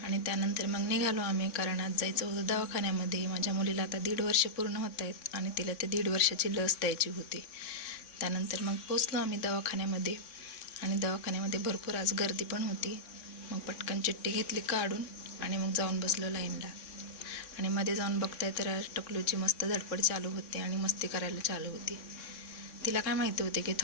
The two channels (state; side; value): late; right; 3.6 ms